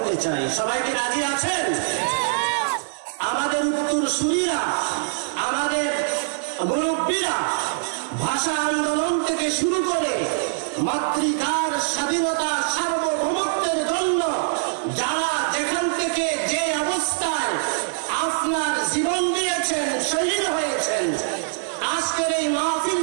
চাই। সবাইকে রাজি আছেন? আমাদের উত্তরসূরিরা, আমাদের মুরব্বীরা ভাষা আন্দোলন থেকে শুরু করে মাতৃকার স্বাধীনতা সার্বভৌমত্বের জন্য যারা যেখান থেকে যে অবস্থায় আপনার জীবন দিয়েছেন, শহীদ হয়েছেন, আজকের এই মাহফিল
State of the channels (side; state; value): left; silent; digital silence